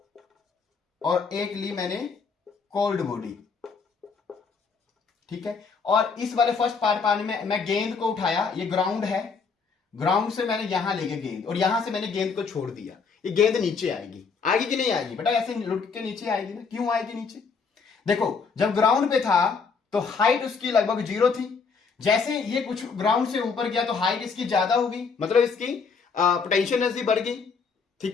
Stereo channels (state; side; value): quieter; right; 5.2 dB